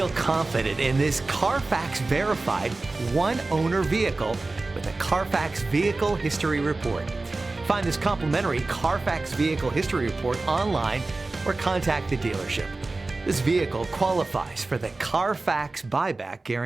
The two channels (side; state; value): left; quieter; 3.3 dB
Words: confident in this Carfax verified one-owner vehicle with a Carfax Vehicle History Report. Find this complimentary Carfax Vehicle History Report online or contact the dealership. This vehicle qualifies for the Carfax Buyback